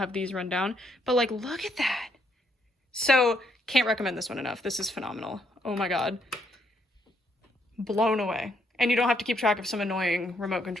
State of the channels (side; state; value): both; normal; correlation 0.73